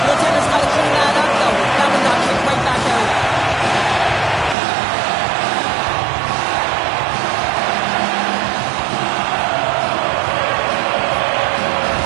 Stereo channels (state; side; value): drops out; left; at 4.5 s